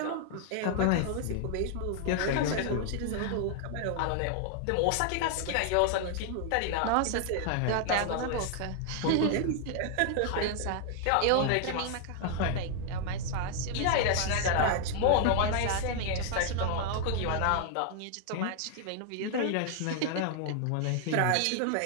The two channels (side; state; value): both; different; correlation 0.00